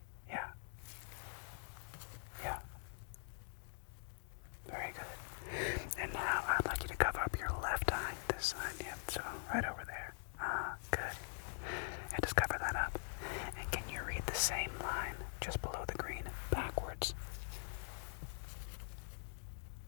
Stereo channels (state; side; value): silent; right; digital silence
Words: Yeah. Yeah. Very good. And now I'd like you to cover up your left eye. This side, yep. So right over there. Good. And just cover that up. And can you read the same line just below the green backwards?